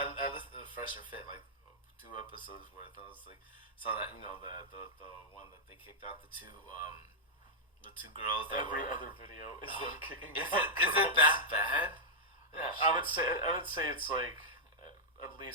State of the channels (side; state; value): both; normal; correlation -0.09